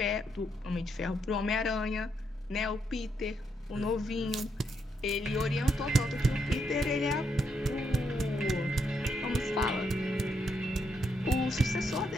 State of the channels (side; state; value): both; normal; correlation 0.78